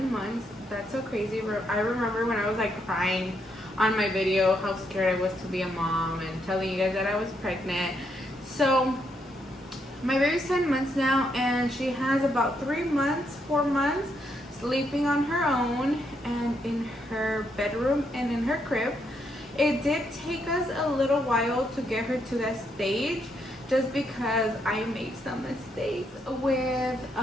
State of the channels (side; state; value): both; normal; correlation 0.77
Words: months. That's so crazy. I remember when I was like crying on my video how scared I was to be a mom and telling you guys that I was pregnant. So my baby's 10 months now, and she has about 4 months sleeping on her own and in her bedroom and in her crib. It did take us a little while to get her to that stage, just because I made some mistakes with